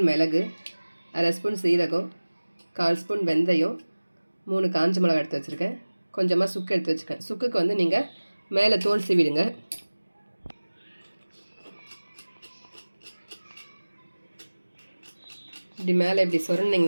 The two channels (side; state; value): both; inverted; correlation -1.00